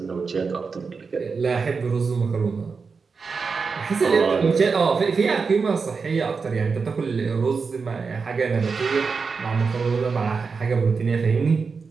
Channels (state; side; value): quieter; left; 5.0 dB